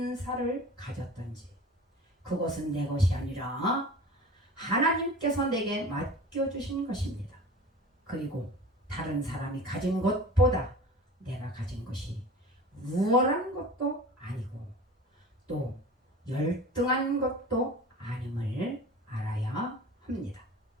가졌던지 그것은 내 것이 아니라 하나님께서 내게 맡겨주신 것입니다. 그리고 다른 사람이 가진 것보다 내가 가진 것이 우월한 것도 아니고 또 열등한 것도 아님을 알아야 합니다.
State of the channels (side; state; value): both; normal; correlation 0.39